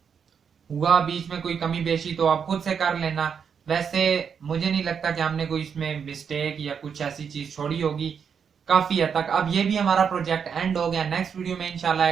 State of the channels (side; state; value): left; quieter; 6.9 dB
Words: हुआ बीच में कोई कमी बेशी तो आप खुद से कर लेना। वैसे मुझे नहीं लगता कि हमने कोई इसमें मिस्टेक या कुछ ऐसी चीज छोड़ी होगी, काफी हद तक। अब ये भी हमारा प्रोजेक्ट एंड हो गया। नेक्स्ट वीडियो में इंशाल्लाह